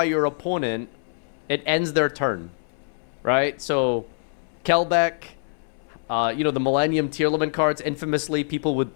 your opponent, it ends their turn. Right? So, Kelbeck, you know, the Millennium Tearlament cards, infamously, people would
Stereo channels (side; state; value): right; silent; 62 dB below the other